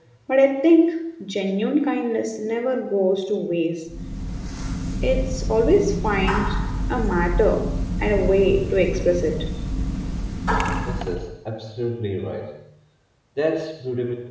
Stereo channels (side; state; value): both; identical; correlation 1.00